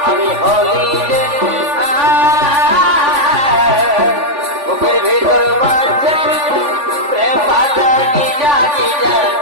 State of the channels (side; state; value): left; late; 3.5 ms